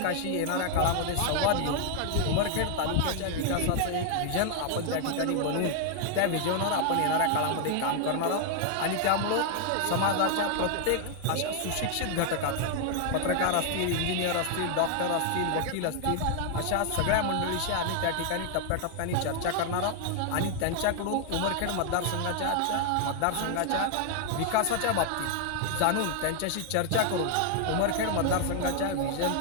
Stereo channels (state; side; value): different; both; correlation 0.00